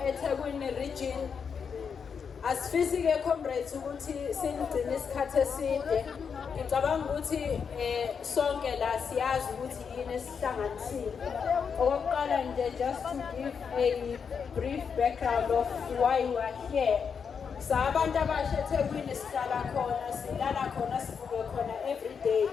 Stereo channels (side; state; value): right; quieter; 6.4 dB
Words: eThekwini region. Asifisi-ke comrades ukuthi sinigcine isikhathi eside. Ngicabanga ukuthi sonke la siyazi ukuthi yini esihlanganisile. Okokuqala nje, just to give a brief background of why we are here. Sabantu abasha eThekwini sihlala khona, silala khona, sivuke khona every day.